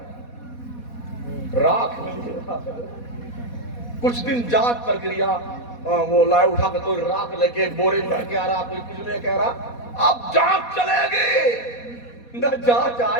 راکھ ملی. کچھ دن جانچ پرکریا، وہ لائے اٹھا کر کوئی راکھ لے کے بورے میں کہہ رہا، کوئی کچھ میں کہہ رہا. اب جانچ چلے گی، نہ جانچ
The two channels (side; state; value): right; late; 4.2 ms